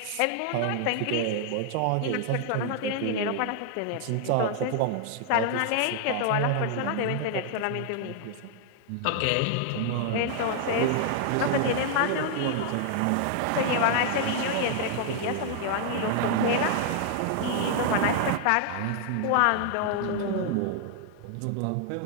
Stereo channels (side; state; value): both; different; correlation 0.00